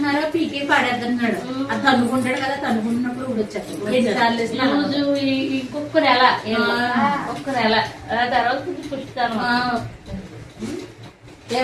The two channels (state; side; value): identical; both; correlation 1.00